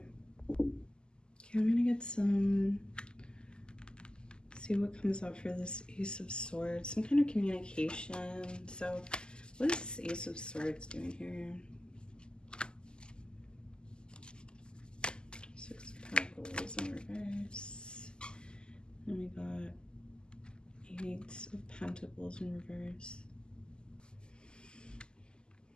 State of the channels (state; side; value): late; right; 0.047 ms